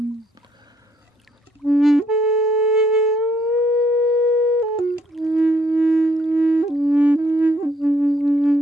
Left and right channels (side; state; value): both; normal; correlation 0.68